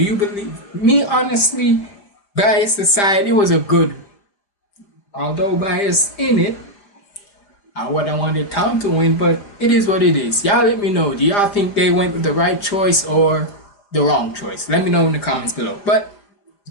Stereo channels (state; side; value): late; right; 4.9 ms